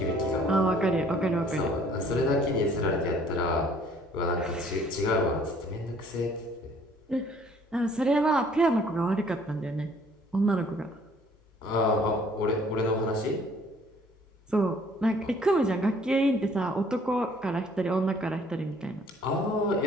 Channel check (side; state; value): both; normal; correlation 0.58